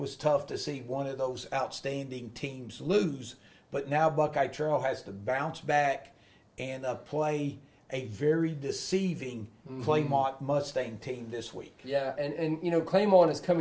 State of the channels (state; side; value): identical; both; correlation 1.00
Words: tough to see one of those outstanding teams lose. But now Buckeye Trail has to bounce back and play a very deceiving Claymont Mustang team this week. Yeah, and Claymont is